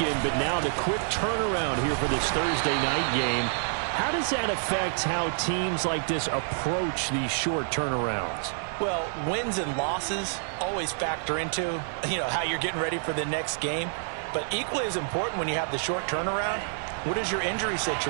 but now the quick turnaround here for this Thursday night game. How does that affect how teams like this approach these short turnarounds? Well, wins and losses always factor into, how you're getting ready for the next game. But equally as important when you have the short turnaround, what is your injury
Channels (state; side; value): silent; left; 59 dB below the other